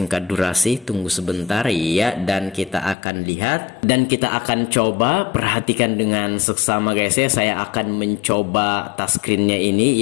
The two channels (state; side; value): drops out; right; at 3.0 s